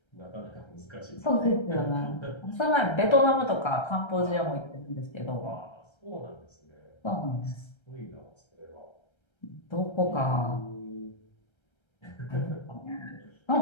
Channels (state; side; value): late; right; 1.3 ms